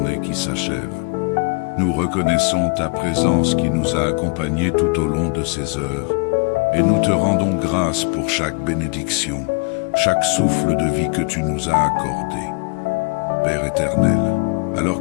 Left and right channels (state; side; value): quieter; right; 33.4 dB